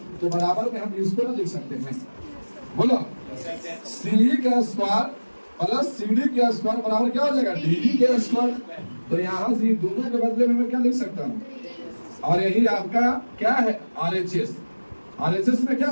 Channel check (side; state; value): both; inverted; correlation -1.00